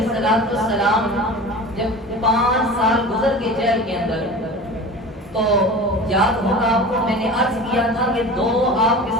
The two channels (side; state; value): both; normal; correlation 0.35